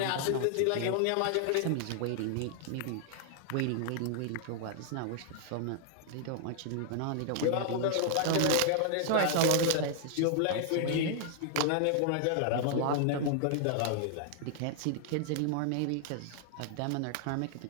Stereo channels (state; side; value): different; both; correlation 0.00